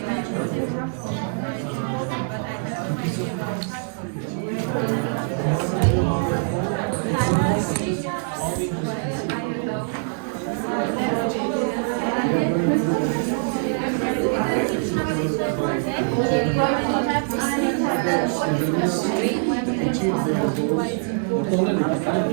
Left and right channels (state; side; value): silent; left; 63 dB below the other